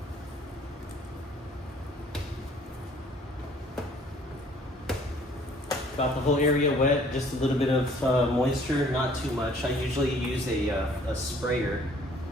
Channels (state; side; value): normal; both; correlation 0.57